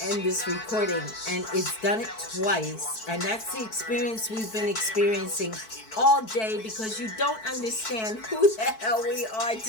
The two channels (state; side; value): late; right; 4.6 ms